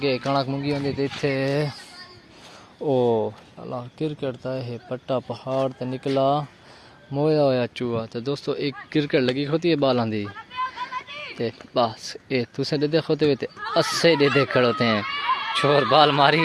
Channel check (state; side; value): identical; both; correlation 1.00